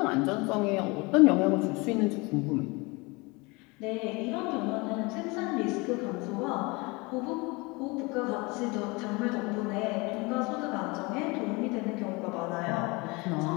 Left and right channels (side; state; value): right; quieter; 26.1 dB